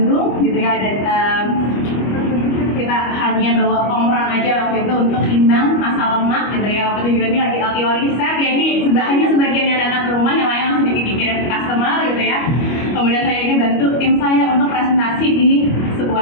gitu ya. Ada kita hanya bawa komron aja waktu itu untuk timbang masa lemak, gitu ya. Waktu itu ini lagi LTO riset, ya ini hanya sebagian yang datang ke rumah, yang lain langsung dikirim ke customer, gitu ya. Kemudian saya ini bantu tim saya untuk presentasi di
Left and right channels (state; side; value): late; right; 25 ms